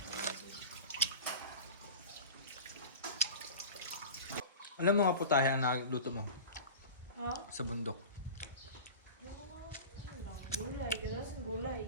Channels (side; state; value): both; inverted; correlation -0.35